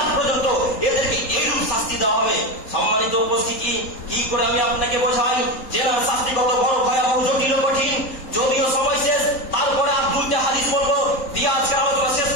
আজ পর্যন্ত, এদেরকে এইরূপ শাস্তি দেওয়া হবে। সম্মানিত উপস্থিতি, কি করে আমি আপনাকে বোঝাই জেনার শাস্তি কত বড় ভয়াবহ, জটিল, কঠিন। যদিও সময় শেষ, তারপরে আর দুইটা হাদিস বলবো, দিয়ে আজকের আলোচনা শেষ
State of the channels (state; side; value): late; right; 3.8 ms